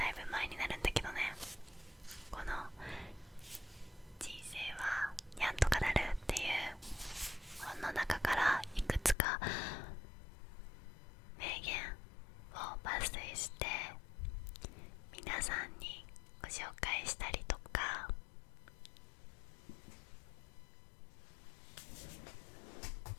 いぶ前になるんだけどね、この人生はにゃんとかなるっていう本の中からいくつか名言を抜粋して皆さんにご紹介したりとか、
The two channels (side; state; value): right; drops out; at 9.2 s